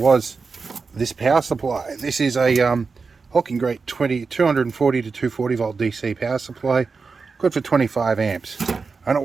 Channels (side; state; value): left; quieter; 4.7 dB